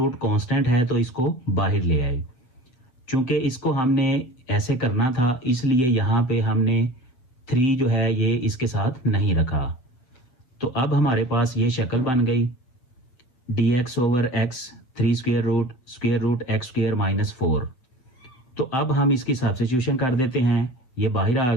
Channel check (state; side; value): late; right; 7.9 ms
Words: कांस्टेंट है तो इसको बाहर ले आए। चूंकि इसको हमने ऐसे करना था इसलिए यहाँ पे हमने 3 जो है ये इसके साथ नहीं रखा। तो अब हमारे पास ये शक्ल बन गई dx over x 3 square root x square minus 4। तो अब हम इसकी सब्स्टिट्यूशन कर देते हैं। ये बाहर आ